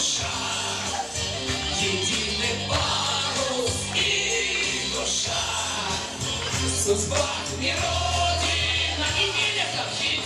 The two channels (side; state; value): both; identical; correlation 1.00